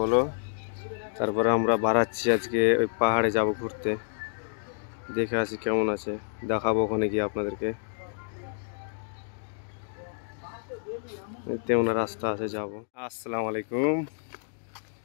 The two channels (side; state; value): right; silent; digital silence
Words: তারপরে আমরা বাড়াচ্ছি আজকে ওই পাহাড়ে যাব ঘুরতে। দেখে আসি কেমন আছে, দেখাবো ওখানে গিয়ে আপনাদেরকে। তেমন রাস্তা আছে যাব। আসসালামু আলাইকুম।